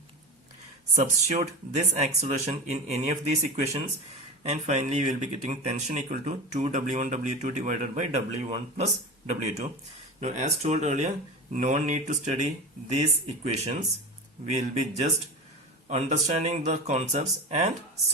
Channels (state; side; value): normal; both; correlation 0.27